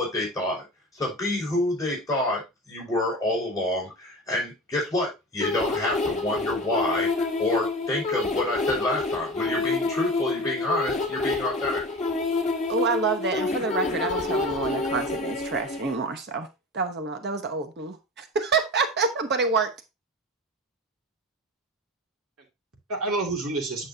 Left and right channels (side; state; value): both; normal; correlation 0.31